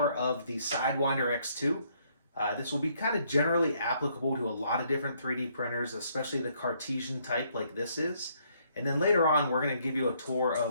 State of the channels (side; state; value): both; inverted; correlation -0.69